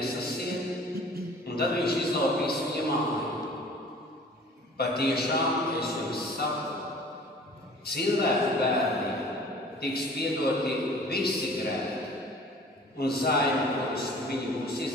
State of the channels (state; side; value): normal; both; correlation 0.48